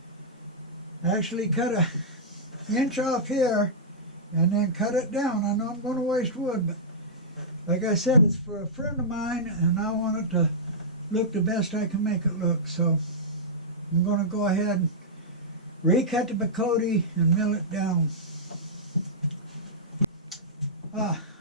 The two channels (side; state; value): both; normal; correlation -0.14